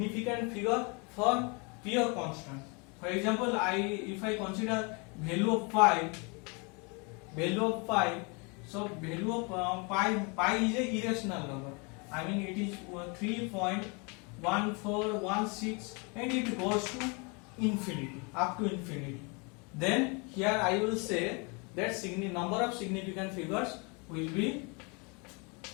figure for pure constant. For example, if I consider value of pi, so value of pi is a irrational number. I mean it is 3.1416 and it goes to infinity, up to infinity. Then here I will say that number of significant figures will be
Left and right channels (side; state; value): right; quieter; 31.8 dB